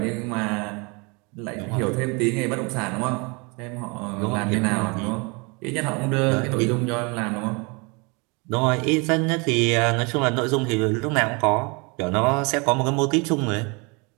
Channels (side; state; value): left; quieter; 30.0 dB